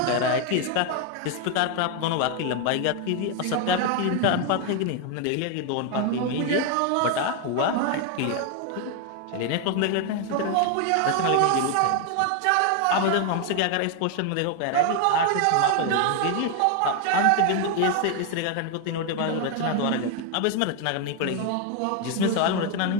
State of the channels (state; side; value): different; both; correlation 0.01